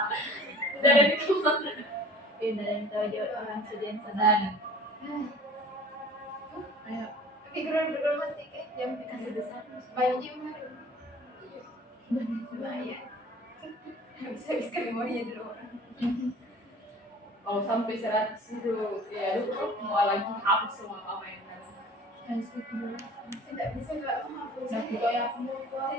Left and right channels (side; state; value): both; normal; correlation 0.46